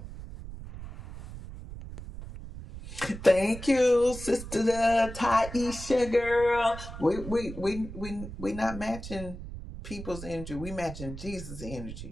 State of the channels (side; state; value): right; noise; rumble, 11 dB below the sound